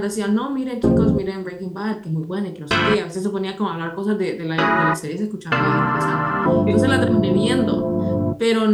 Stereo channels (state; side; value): identical; both; correlation 1.00